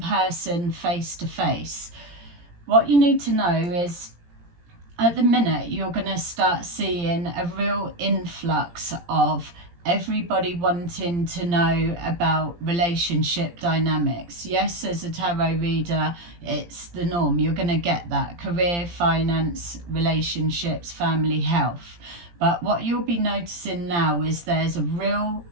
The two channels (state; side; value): late; left; 17 ms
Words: face to face. What you need to know is at the minute you're going to start seeing a real influx of everybody wanting to know about relationship dynamics. Yes, as a tarot reader, it's the norm. You're going to get that. Career, finance, relationships, family, health. But what you'll be noticing now is there's a real